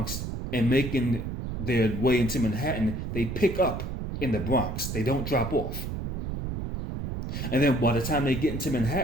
and making their way into Manhattan, they pick up in the Bronx. They don't drop off. And then by the time they get into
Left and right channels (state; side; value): noise; right; rumble, 4 dB below the sound